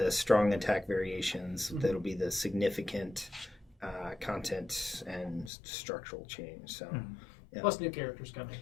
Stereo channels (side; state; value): right; drops out; at 5.5 s